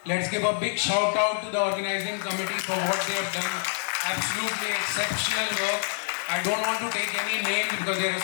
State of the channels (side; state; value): right; silent; digital silence